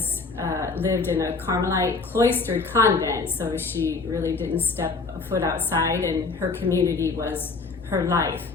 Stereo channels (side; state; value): right; quieter; 4.2 dB